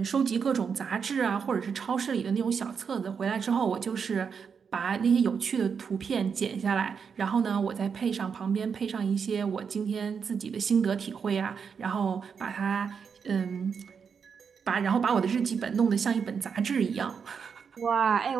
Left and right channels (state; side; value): quieter; left; 6.4 dB